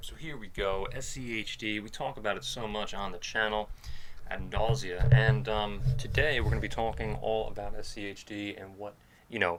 So here we go, SCHD. We talk about it so much on the channel ad nausea, and today we're going to be talking all about SCHD and what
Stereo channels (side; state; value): both; identical; correlation 1.00